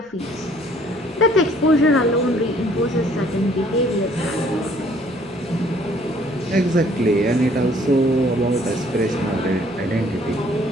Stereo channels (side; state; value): right; noise; rumble, 30 dB below the sound